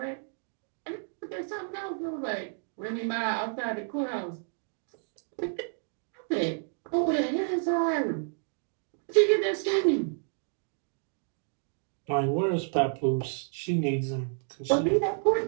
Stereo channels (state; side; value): silent; left; 58 dB below the other